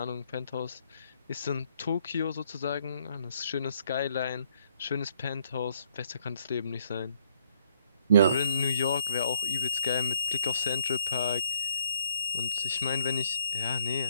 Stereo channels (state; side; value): inverted; both; correlation -0.68